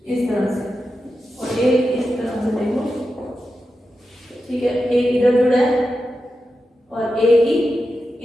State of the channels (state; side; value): normal; both; correlation 0.90